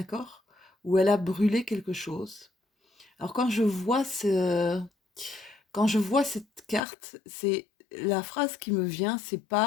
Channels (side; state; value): right; drops out; at 6.8 s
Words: où elle a brûlé quelque chose. Alors quand je vois cette carte, c'est la phrase qui me vient, c'est